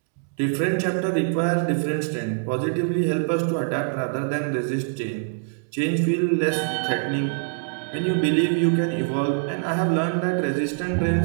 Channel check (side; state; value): left; silent; digital silence